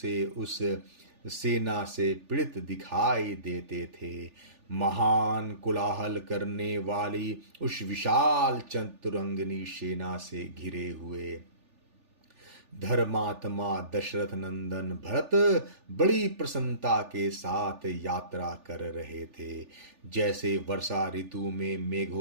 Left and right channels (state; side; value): late; left; 3.4 ms